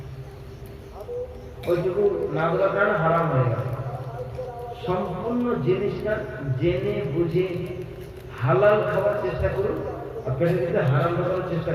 ওইটুকু না দেওয়ার কারণে হারাম হয়ে গেল। সম্পূর্ণ জিনিসটা জেনে বুঝে হালাল খাওয়ার চেষ্টা করুন, আর পেটের ভিতরে হারাম খাওয়ার চেষ্টা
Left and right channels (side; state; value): both; identical; correlation 1.00